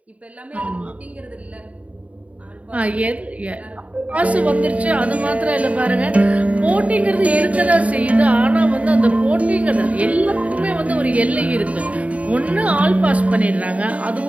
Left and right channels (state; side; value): late; left; 0.067 ms